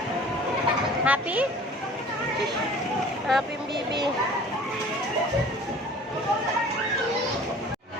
Happy? Shush! Happy, baby.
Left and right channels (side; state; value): both; normal; correlation 0.46